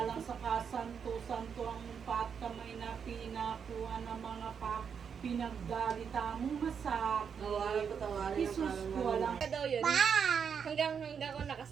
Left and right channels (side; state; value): left; quieter; 6.9 dB